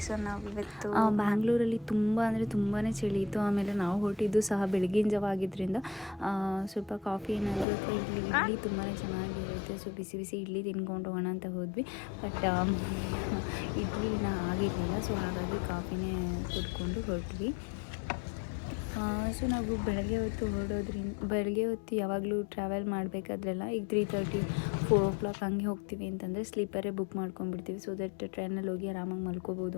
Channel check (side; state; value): right; drops out; at 7.7 s